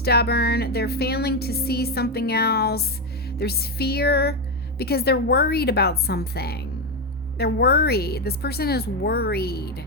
They're failing to see something else. There's fear because they're worried about something. They're worried. This person is worried.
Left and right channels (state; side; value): normal; both; correlation 0.08